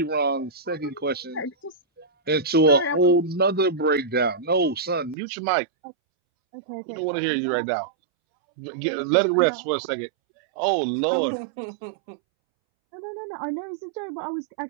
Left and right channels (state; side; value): drops out; left; at 5.2 s